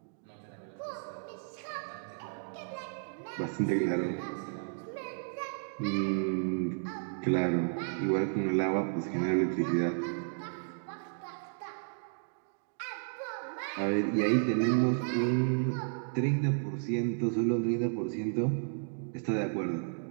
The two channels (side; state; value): left; silent; digital silence